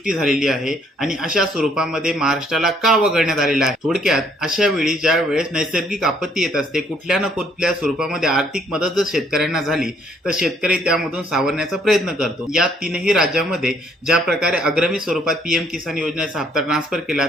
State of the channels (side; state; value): both; normal; correlation 0.65